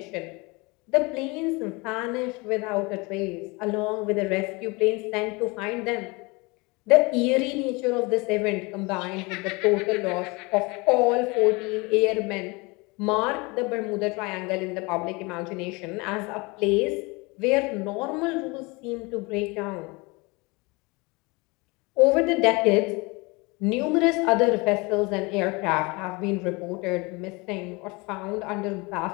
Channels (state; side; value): quieter; right; 26.4 dB